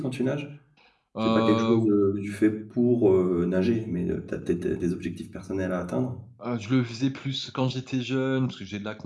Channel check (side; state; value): both; identical; correlation 1.00